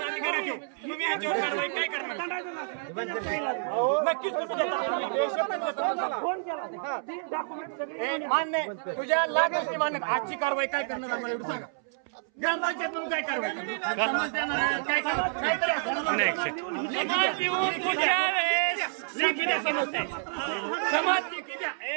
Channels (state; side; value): silent; left; 59 dB below the other